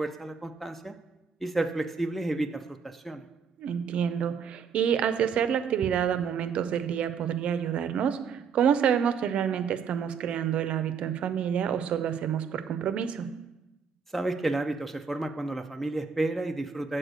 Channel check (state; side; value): quieter; left; 6.5 dB